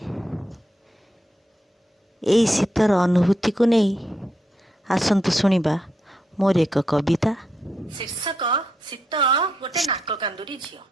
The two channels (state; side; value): normal; both; correlation 0.81